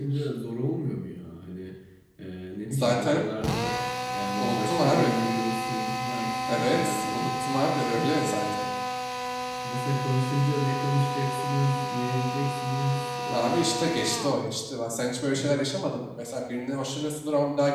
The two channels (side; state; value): both; identical; correlation 1.00